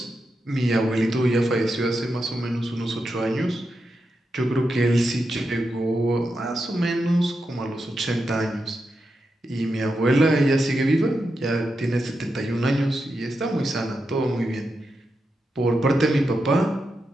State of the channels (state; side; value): normal; both; correlation 0.87